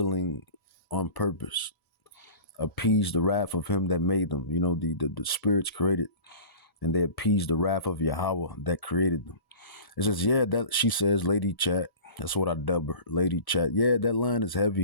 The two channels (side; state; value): right; late; 1.7 ms